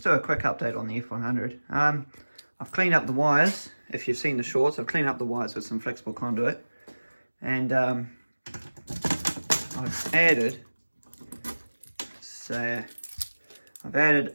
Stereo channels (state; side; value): inverted; both; correlation -1.00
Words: do a quick update on the F100. I've cleaned up the wires. If you've seen the shorts, I've cleaned up the wires with some flexible conduit. And I've added